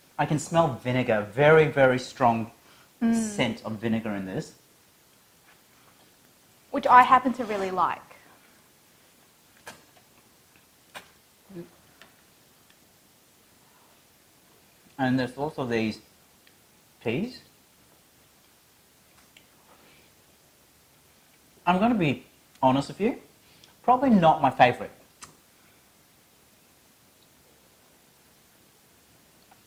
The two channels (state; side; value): identical; both; correlation 1.00